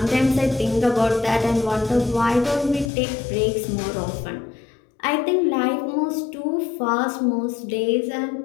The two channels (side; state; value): right; drops out; at 2.9 s